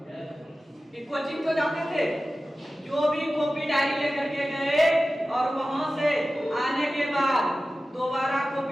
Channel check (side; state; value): both; normal; correlation 0.95